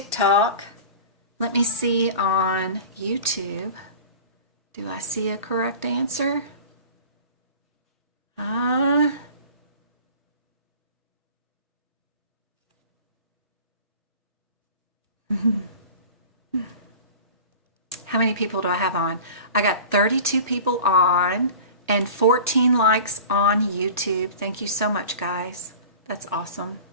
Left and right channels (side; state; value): both; inverted; correlation -0.39